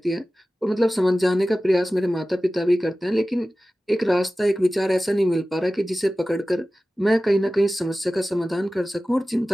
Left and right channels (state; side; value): normal; both; correlation 0.96